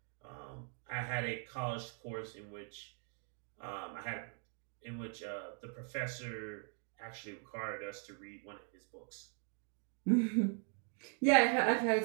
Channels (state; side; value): quieter; left; 39.9 dB